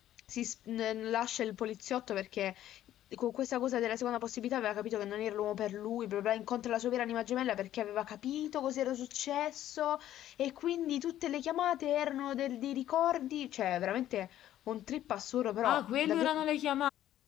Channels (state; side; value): quieter; right; 12.5 dB